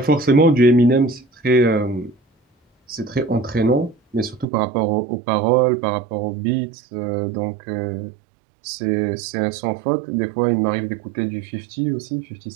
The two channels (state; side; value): drops out; left; at 4.5 s